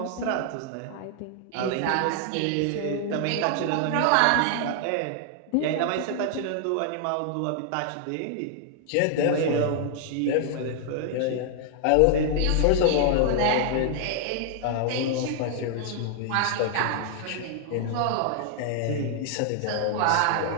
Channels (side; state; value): both; different; correlation 0.00